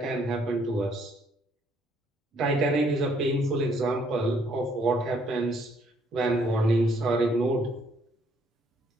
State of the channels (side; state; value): both; normal; correlation 0.67